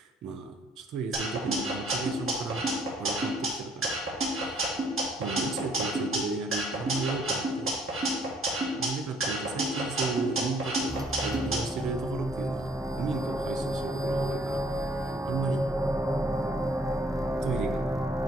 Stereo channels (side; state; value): both; normal; correlation 0.62